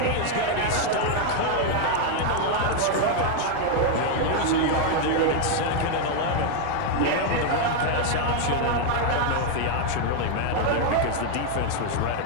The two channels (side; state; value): both; different; correlation 0.00